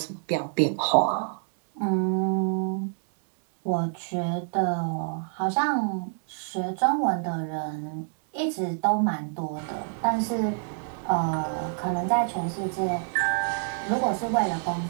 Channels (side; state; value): left; silent; 60 dB below the other